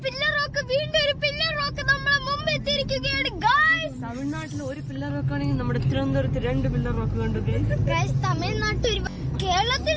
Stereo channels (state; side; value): identical; both; correlation 1.00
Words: പില്ലർ റോക്ക്, വീണ്ടും ഒരു പില്ലർ റോക്ക് നമ്മളെ മുമ്പ് എത്തിയിരിക്കുകയാണ് ഗൈസ്. തമിഴ്നാട്ടിൽ ഒരു പില്ലർ റോക്ക് ആണെങ്കിൽ നമ്മുടെ തിരുവനന്തപുരത്ത് 2 പില്ലർ റോക്ക് കണ്ടു ഗൈസ്. തമിഴ്നാട്ടിൽ കേരളത്തിൽ